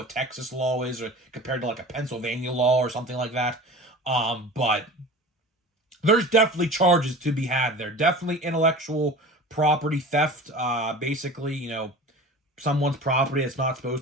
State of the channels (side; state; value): both; normal; correlation 0.37